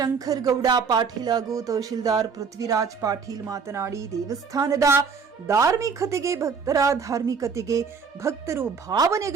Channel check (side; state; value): left; quieter; 5.6 dB